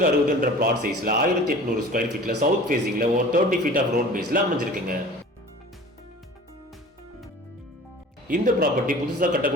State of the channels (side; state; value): both; normal; correlation 0.42